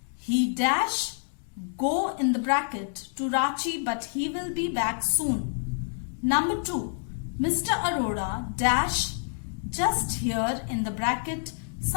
He dash go in the bracket to Ranchi but he will be back soon. Number 2. Mr. Arora dash just here in the bracket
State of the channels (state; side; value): silent; right; digital silence